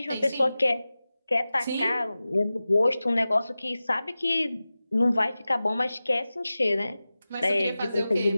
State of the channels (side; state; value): both; inverted; correlation -0.96